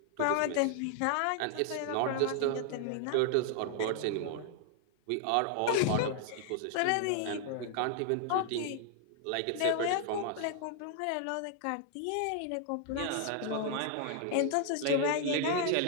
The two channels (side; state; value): both; different; correlation 0.00